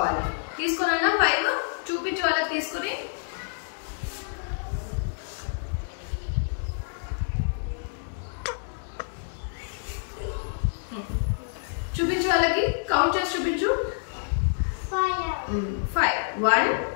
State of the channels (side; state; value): right; silent; digital silence